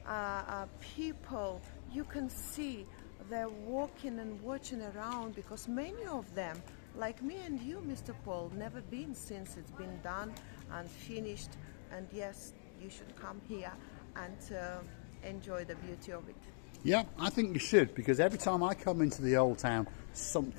People, you can see they're walking and watching around, because many of them, like me and you, Mr. Paul, never been since it's been done and finished. And yes, you should come here and enjoy the beauty of it. Yeah, I think you should, because every time I come into the Old Town,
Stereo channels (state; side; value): silent; right; digital silence